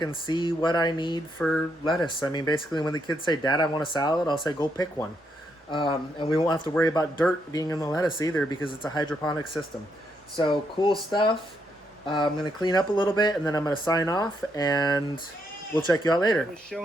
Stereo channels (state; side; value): normal; both; correlation 0.77